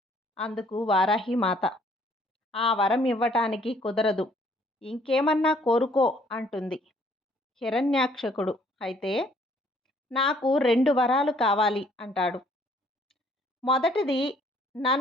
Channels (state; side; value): normal; both; correlation 0.62